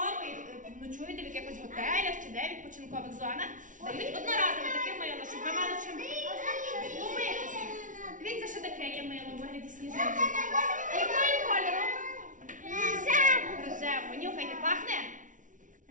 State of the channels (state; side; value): late; left; 0.37 ms